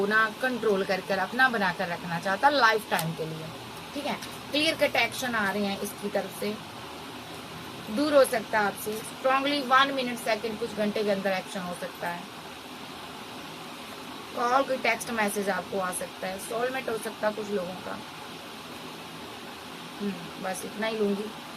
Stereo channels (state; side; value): identical; both; correlation 1.00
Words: ना कंट्रोल कर अपना बनाकर रखना चाहता है लाइफ टाइम के लिए, ठीक है। क्लियर कट एक्शन आ रहे हैं इसकी तरफ से, दूर हो सकता है आपसे, स्ट्रांगली 1 मिनट सेकेंड कुछ घंटे के अंदर एक्शन हो सकता है, कॉल कोई टेक्स्ट मैसेज आपको आ सकता है, सोलमेट हो सकता है कुछ लोगों का। बस इतना ही लूंगी।